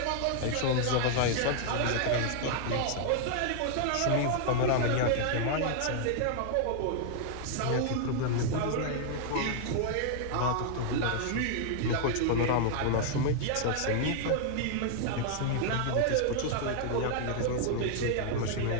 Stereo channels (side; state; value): both; different; correlation 0.00